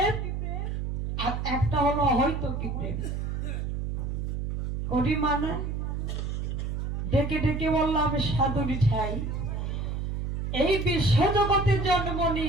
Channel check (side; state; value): right; noise; hum, 2 dB below the sound